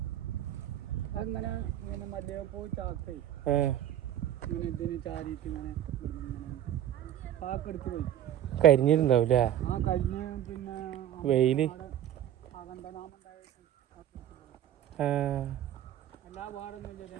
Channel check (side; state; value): left; quieter; 11.3 dB